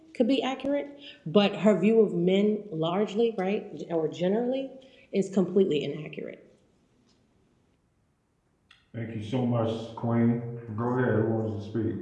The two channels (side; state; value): both; identical; correlation 1.00